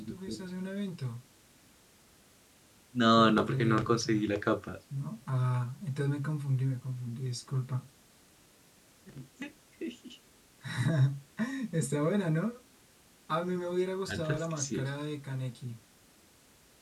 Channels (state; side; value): identical; both; correlation 1.00